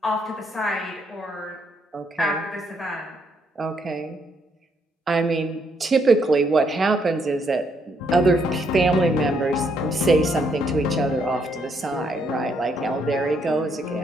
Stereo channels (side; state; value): both; normal; correlation 0.73